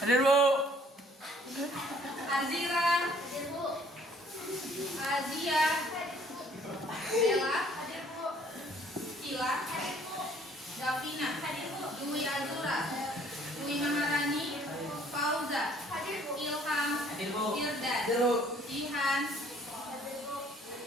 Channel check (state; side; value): normal; both; correlation 0.59